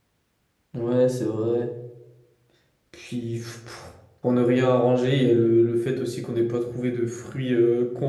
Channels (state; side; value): identical; both; correlation 1.00